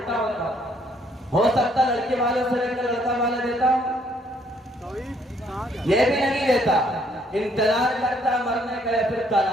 ہوتا ہو سکتا لڑکی والوں سے لے کر لڑکا والا دیتا ہوں، یہ بھی نہیں دیتا، انتظار کرتا مرنے کا یا پھر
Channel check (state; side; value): normal; both; correlation 0.66